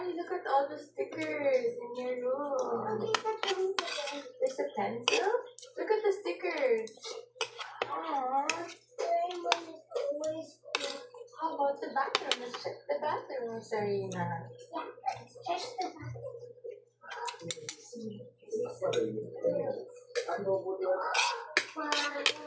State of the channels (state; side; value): identical; both; correlation 1.00